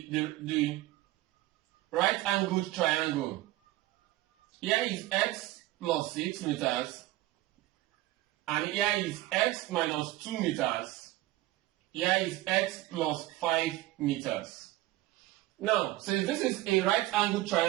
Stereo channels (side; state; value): left; quieter; 17.1 dB